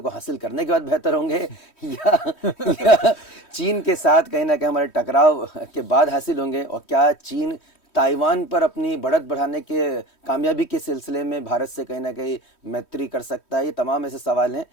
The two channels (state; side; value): late; right; 3.1 ms